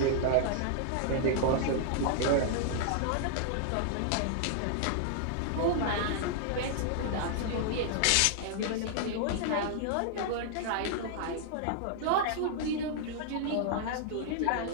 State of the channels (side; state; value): both; different; correlation -0.01